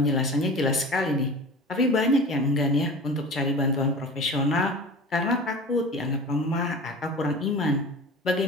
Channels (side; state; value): both; normal; correlation 0.36